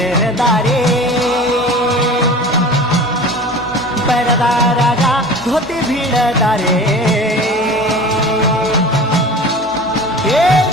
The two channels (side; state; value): both; normal; correlation 0.38